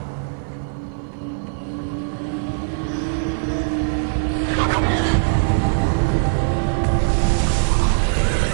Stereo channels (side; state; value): left; silent; 56 dB below the other